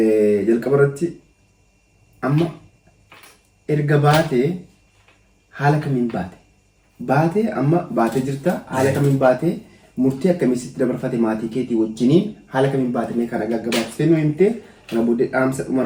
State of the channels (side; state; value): both; identical; correlation 1.00